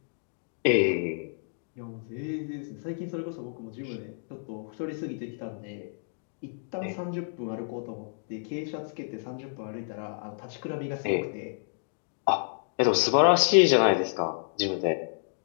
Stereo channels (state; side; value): silent; right; digital silence